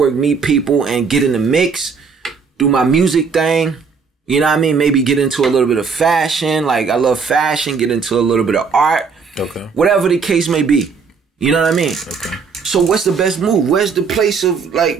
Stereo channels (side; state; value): left; quieter; 5.4 dB